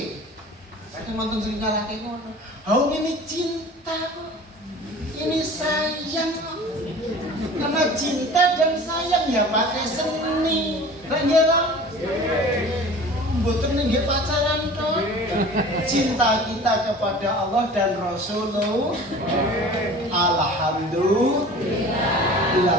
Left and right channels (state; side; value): normal; both; correlation 0.42